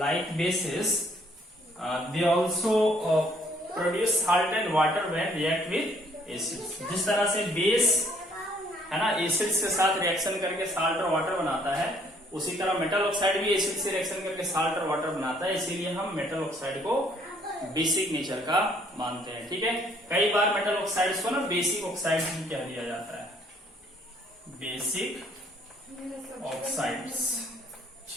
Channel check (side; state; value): both; normal; correlation 0.63